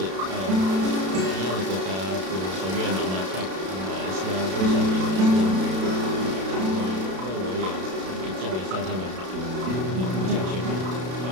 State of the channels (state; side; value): late; left; 32 ms